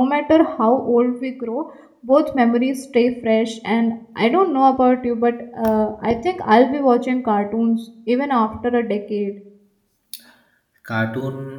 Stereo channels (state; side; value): identical; both; correlation 1.00